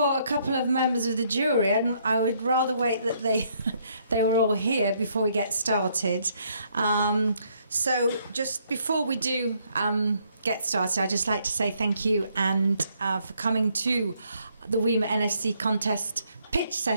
a couple of members of the jury, and I would rather wait that they they were all here before we get started. So just before we do get started, I'd just like to say thank you and for coming to the WIMA NFC contest pitch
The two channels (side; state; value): both; inverted; correlation -0.69